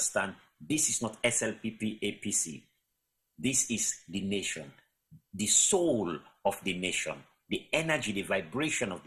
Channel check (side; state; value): both; identical; correlation 1.00